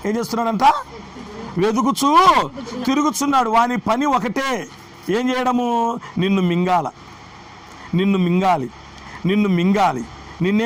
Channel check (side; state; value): both; identical; correlation 1.00